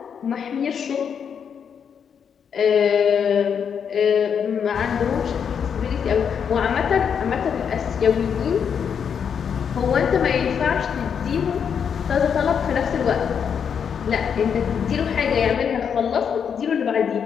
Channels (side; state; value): right; quieter; 7.3 dB